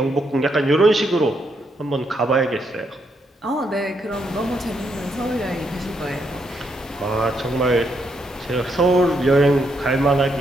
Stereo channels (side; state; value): both; normal; correlation 0.77